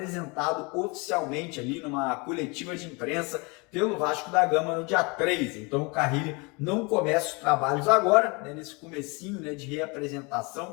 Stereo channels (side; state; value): right; quieter; 29.0 dB